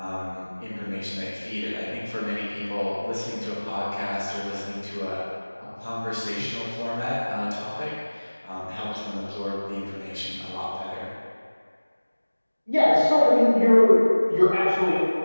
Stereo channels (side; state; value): both; inverted; correlation -1.00